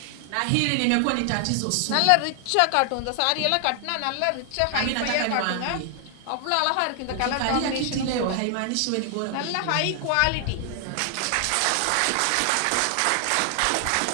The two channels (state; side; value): different; both; correlation 0.00